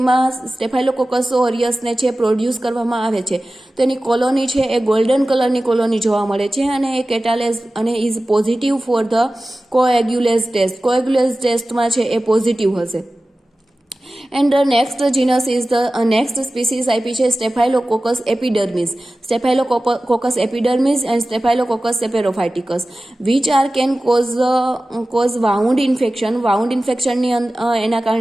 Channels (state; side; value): normal; both; correlation 0.96